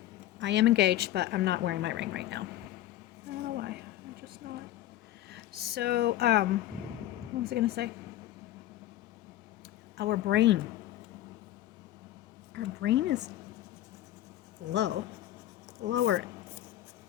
I am engaged, but I'm not wearing my ring right now. I don't know why. I'm just not. So, what was I going to say? Our brain is lower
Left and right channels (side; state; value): right; quieter; 13.7 dB